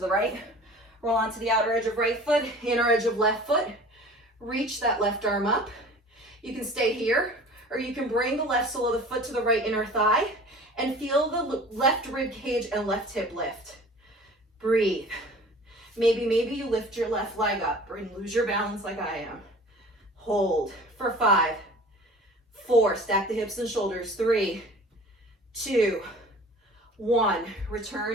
right. Roll onto the outer edge of right foot, inner edge of left foot. Reach that left arm up. You can stay here, or you can bring the left sole of the foot to the right inner thigh and feel the left rib cage and left hip lift. Breathe. Maybe you lift your left leg up or lose your balance like I am. Hold for 5, 4, stack the hips and shoulders. 3, 2, 1.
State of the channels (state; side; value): normal; both; correlation 0.44